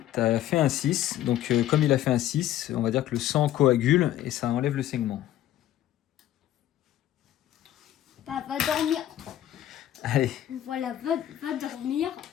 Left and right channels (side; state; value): right; quieter; 12.7 dB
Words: tu as fait un 6. Donc, comme il a fait un 6, on va dire que le sang coagule et ça enlève le saignement. Bah, va dormir. Allez. Voilà, va dormir.